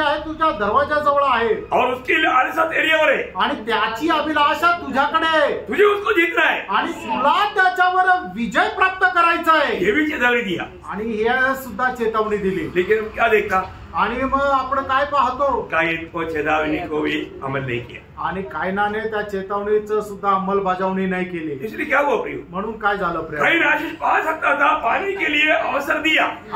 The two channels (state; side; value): identical; both; correlation 1.00